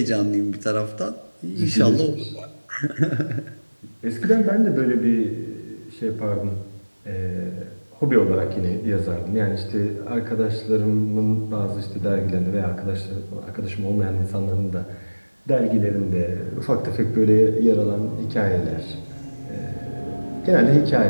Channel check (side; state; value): both; inverted; correlation -1.00